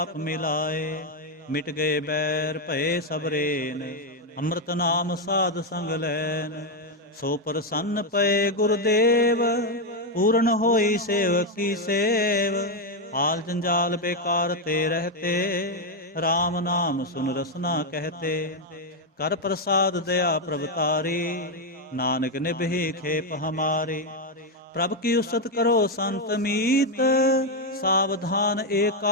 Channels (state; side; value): normal; both; correlation 0.04